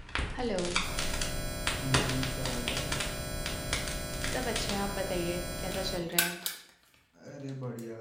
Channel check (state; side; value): identical; both; correlation 1.00